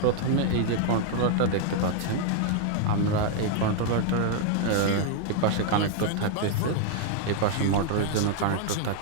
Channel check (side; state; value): both; different; correlation 0.00